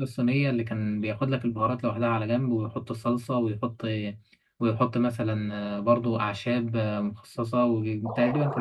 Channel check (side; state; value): both; identical; correlation 1.00